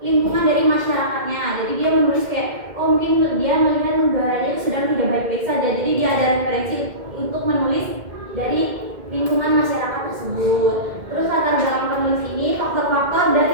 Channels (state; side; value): late; left; 2.1 ms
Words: lingkungan dari masyarakatnya. Jadi dia menulis kayak mungkin dia melihat negaranya itu sedang tidak baik-baik saja. Jadi dia ada referensi untuk menulis dari lingkungan masyarakat tersebut. Terus latar belakang penulis ini faktor-faktor